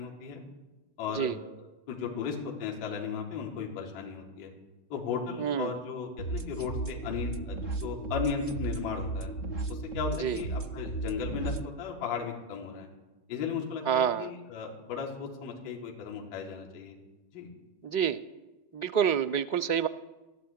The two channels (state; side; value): late; right; 3.7 ms